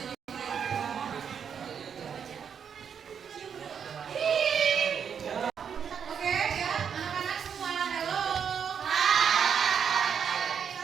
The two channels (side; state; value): left; quieter; 7.4 dB